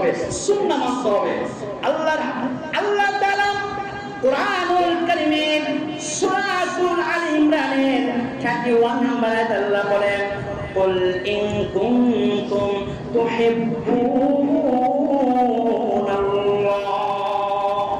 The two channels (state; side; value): identical; both; correlation 1.00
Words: সুন্নাহ মানতে হবে। আল্লাহ তাআলা কুরআনুল কারীমের সূরাতুল আলী ইমরানের 31 নম্বর আয়াতে আল্লাহ বলেন কুল ইন কুনতুম তুহিব্বুনাল্লাহ,